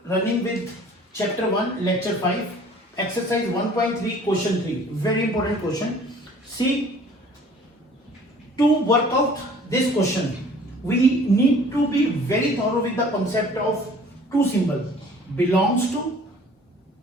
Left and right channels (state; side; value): normal; both; correlation 0.51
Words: running with chapter 1 lecture 5 exercise 1.3 question 3. Very important question. See, to work out this question we need to be very thorough with the concept of two symbols, belongs to